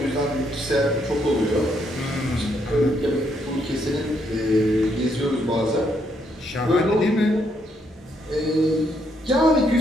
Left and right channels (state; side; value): normal; both; correlation 0.74